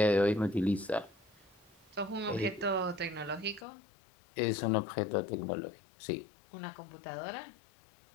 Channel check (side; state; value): right; drops out; at 3.7 s